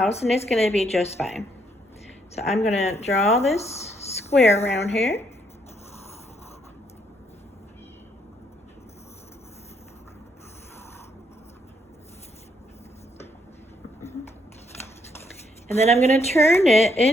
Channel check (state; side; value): normal; both; correlation 0.72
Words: and it's gonna be just fine. So I'm gonna draw this square around here. And then I'm going to turn it